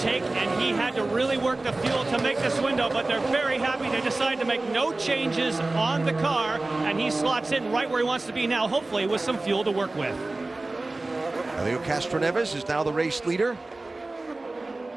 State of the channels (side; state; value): left; quieter; 3.0 dB